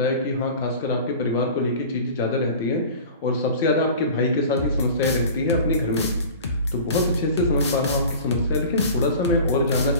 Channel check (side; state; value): both; inverted; correlation -0.39